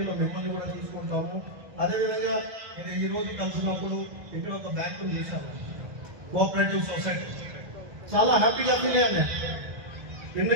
మిమ్మల్ని కూడా తీసుకుంటాము. అదేవిధంగా ఇది ఈరోజు కలిసినప్పుడు ఇక్కడ ఒక బ్యాంకును చూశాను, కోఆపరేటివ్ సొసైటీ. చాలా హ్యాపీగా ఫీల్ అయ్యాను.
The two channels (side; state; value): left; late; 1.7 ms